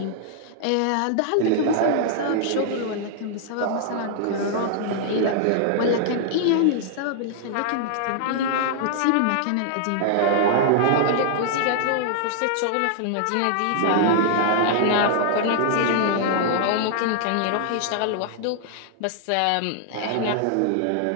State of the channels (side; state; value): both; different; correlation -0.01